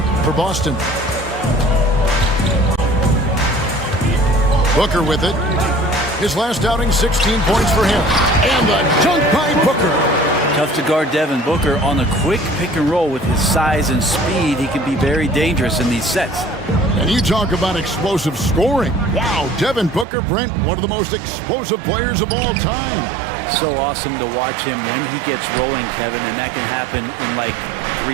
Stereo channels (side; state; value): left; drops out; at 20.1 s